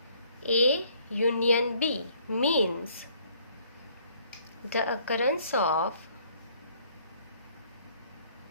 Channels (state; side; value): inverted; both; correlation -0.62